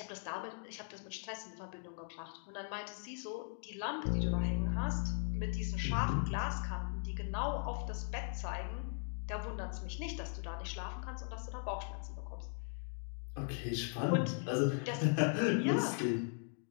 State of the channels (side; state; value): right; silent; 52 dB below the other